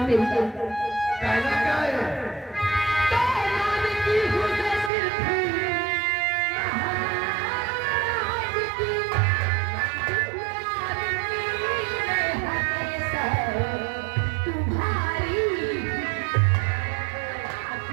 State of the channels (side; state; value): left; drops out; at 4.9 s